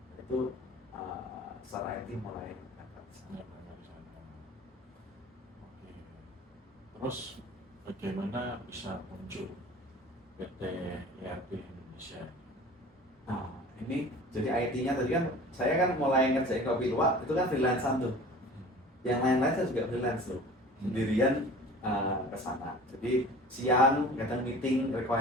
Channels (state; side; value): normal; both; correlation 0.42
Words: Itu secara IT mulai Terus bagaimana bisa muncul PT ERP Indonesia? Nah ini jadi IT-nya tadi kan saya kan mulai ngerjain kopi luwak itu kan freelancer tuh. Yang lain-lain saya juga freelance tuh, sendirian ke sana. Jadi siang kadang meeting